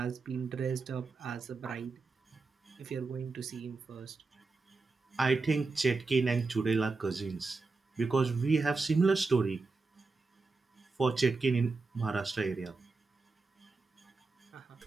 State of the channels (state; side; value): quieter; left; 3.9 dB